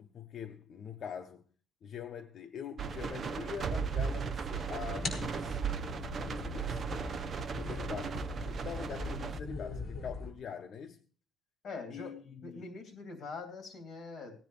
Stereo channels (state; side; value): normal; both; correlation 0.64